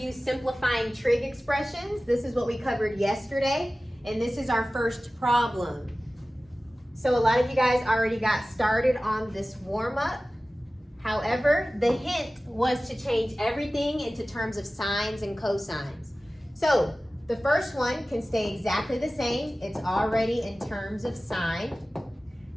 simplifying trig expressions. This is what we covered yesterday, and this is our first problem. So a lot of you guys already got started on this warm-up. However, the hint was to change everything into terms of sines and cosines. So the first one can stay exactly the same. It's already in terms of sine.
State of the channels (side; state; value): both; normal; correlation 0.97